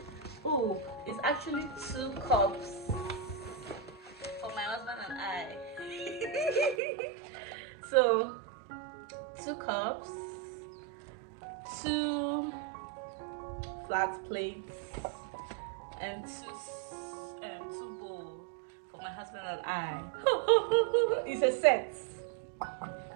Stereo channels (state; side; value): drops out; left; at 6.8 s